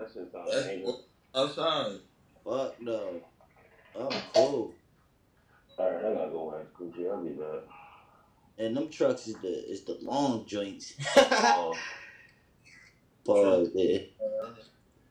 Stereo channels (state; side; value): identical; both; correlation 1.00